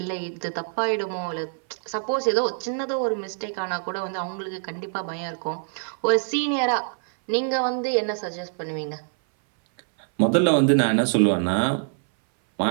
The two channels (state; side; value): silent; left; 59 dB below the other